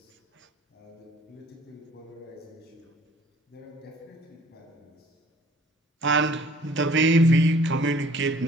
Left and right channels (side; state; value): both; normal; correlation 0.55